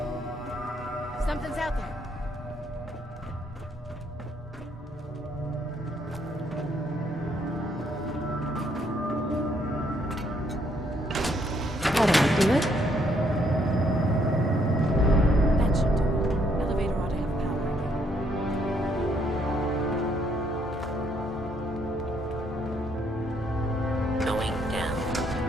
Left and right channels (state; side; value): normal; both; correlation 0.70